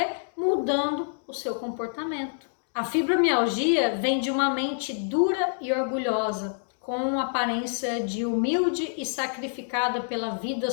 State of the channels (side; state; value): right; silent; digital silence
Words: mudando o seu comportamento. A fibromialgia vem de uma mente dura e orgulhosa, com aparência de humilde e sacrificada pela vida